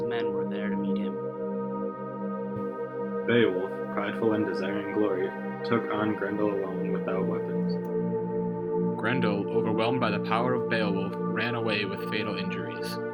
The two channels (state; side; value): identical; both; correlation 1.00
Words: men were there to meet him. Beowulf, prideful and desiring glory, took on Grendel alone without weapons. Grendel, overwhelmed by the power of Beowulf, ran away with fatal injuries.